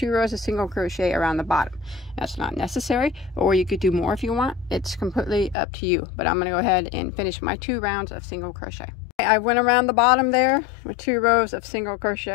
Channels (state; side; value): drops out; right; at 5.6 s